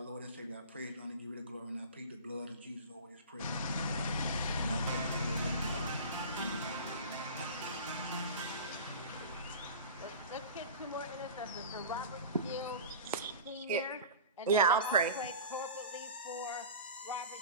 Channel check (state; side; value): inverted; both; correlation -0.33